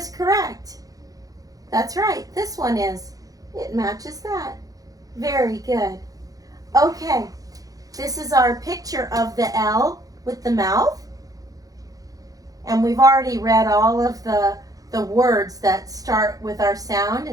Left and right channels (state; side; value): late; left; 0.17 ms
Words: correct? That's right, this one is. It matches that. Very good. Okay, this is our picture of the L with the mouth. And we've already read all of the words that start with our sound